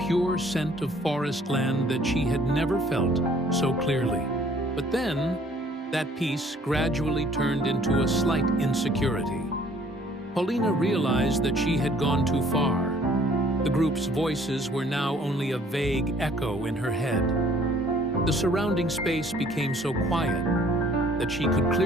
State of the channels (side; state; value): both; normal; correlation 0.58